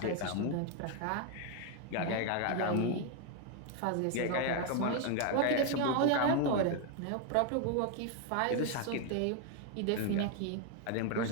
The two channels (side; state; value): both; different; correlation 0.01